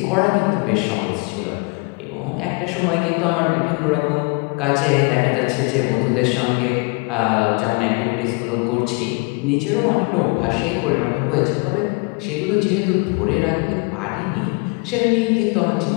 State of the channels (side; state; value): right; quieter; 31.3 dB